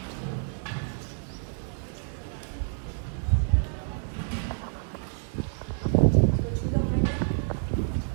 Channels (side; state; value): left; silent; 59 dB below the other